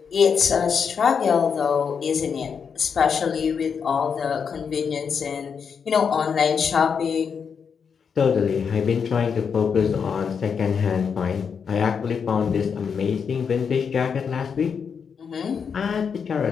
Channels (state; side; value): quieter; right; 6.5 dB